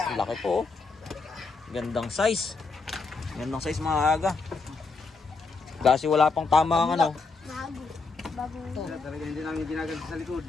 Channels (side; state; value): right; quieter; 4.2 dB